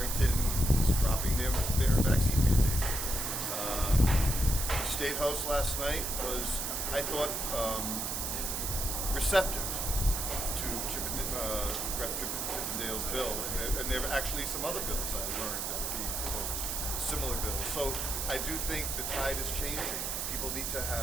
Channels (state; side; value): noise; right; hiss, 2 dB below the sound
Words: is dropping their vaccine mandate. State House last night was, I thought, receptive to Rep. Chippendale's bill. And there are actually some other bills I learned that are being proposed, similar bills. So I do think the tide is changing. People need to